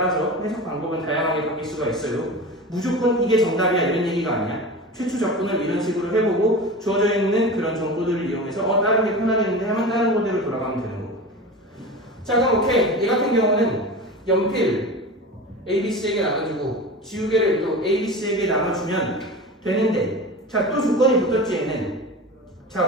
해석 방법은 다양하게 바뀔 수가 있어요. 무조건 이게 정답이야 이런 얘기가 아니야. 최초 접근을 이런 식으로 해보고 주어져 있는 그런 정보들을 이용해서 다른 게 편하겠는데 하면 다른 모델로 돌아가면 되는 거고. 자, 그럼 오케이. 얘 같은 경우는 연필 A, B, C에게 나눠주고 지우개를 또 A, B, C에게 나눠주면 되는데, 자, 또 조건이 붙었지 얘는.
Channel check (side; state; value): both; normal; correlation 0.31